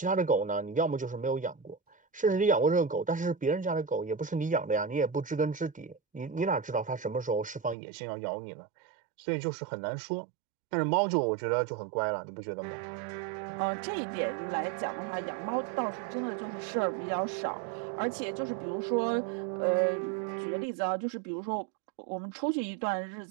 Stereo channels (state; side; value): drops out; left; at 7.8 s